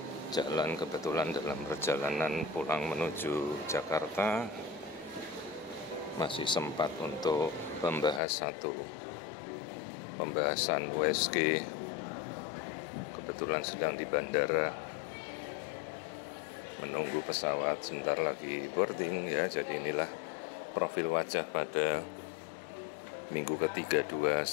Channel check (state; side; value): drops out; right; at 8.2 s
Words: jalan, kebetulan dalam perjalanan pulang menuju Jakarta masih sempat untuk membahas satu pembahasan USG. Kebetulan sedang di bandara menunggu pesawat, sebentar lagi boarding ya. Jadi inilah profil wajah pada minggu ke-32,